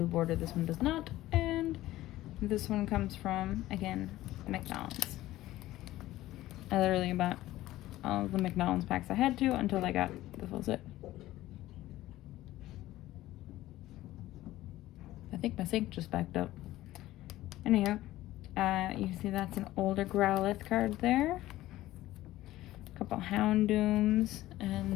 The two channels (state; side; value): quieter; right; 15.7 dB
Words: border, this one does not, and this one comes from, again, McDonald's. I literally bought all of the McDonald's packs I had to until I got the full set. I think my sink just backed up. Anyhow, you can see that's an older Growlithe card there. A couple Houndooms,